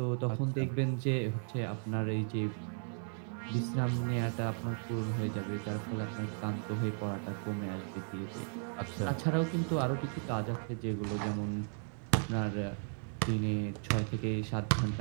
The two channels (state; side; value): silent; left; 54 dB below the other